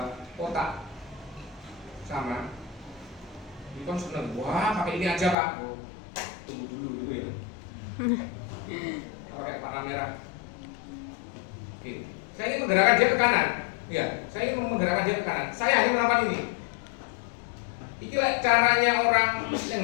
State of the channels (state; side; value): drops out; right; at 5.4 s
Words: kotak sama. Ini kan seneng. Wah, pakai ini aja Pak. Oh, tunggu dulu ya. Pakai warna merah. Oke, saya ingin menggerakkan dia ke kanan. Ya, saya ingin menggerakkan dia ke kanan. Saya hanya melakukan ini. Inilah caranya orang yang